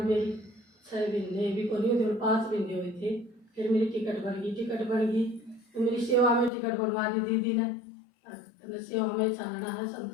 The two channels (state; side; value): drops out; right; at 6.5 s